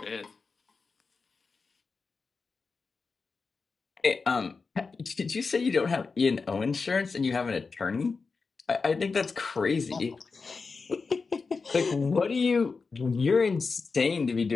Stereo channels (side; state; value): right; quieter; 4.6 dB